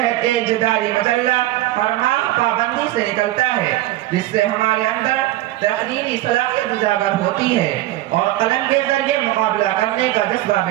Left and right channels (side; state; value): left; quieter; 15.8 dB